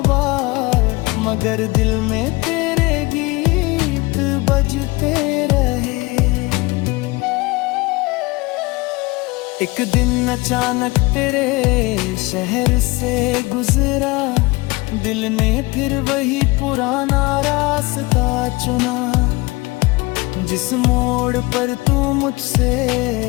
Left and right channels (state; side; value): quieter; right; 23.6 dB